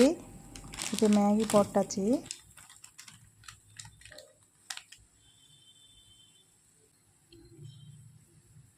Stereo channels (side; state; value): both; identical; correlation 1.00